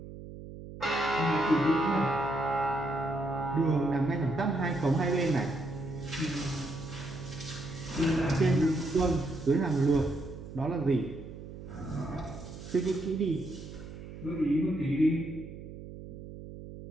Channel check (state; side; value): noise; right; hum, 13 dB below the sound